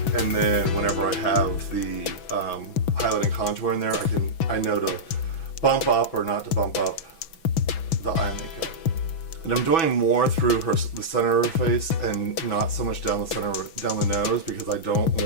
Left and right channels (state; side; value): late; right; 6.1 ms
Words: and then whenever I have the highlight and contour in there, I know to bump up or not to bump up the eye makeup. And I'm doing more through the center of her face and not so much down the nose, because I don't